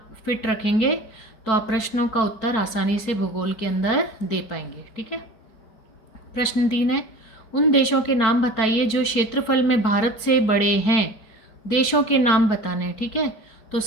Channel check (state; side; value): late; right; 4.6 ms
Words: फिट रखेंगे, तो आप प्रश्नों का उत्तर आसानी से भूगोल के अंदर दे पाएंगे। ठीक है, प्रश्न 3 है, उन देशों के नाम बताइए जो क्षेत्रफल में भारत से बड़े हैं। देशों के नाम बताने हैं। ठीक है, तो